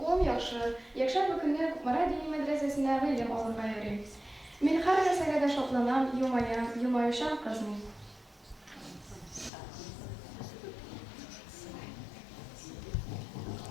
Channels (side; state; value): right; drops out; at 9.5 s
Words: яхшы. Якшәмбе көнне Кукмара дини мәдрәсәсенә гыйлем алырга йөрим. Мин һәр нәрсәгә дә шатланам, елмаям, елмаючан кызмын.